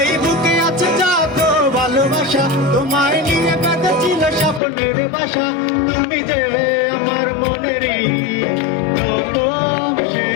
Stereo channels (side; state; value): right; drops out; at 4.6 s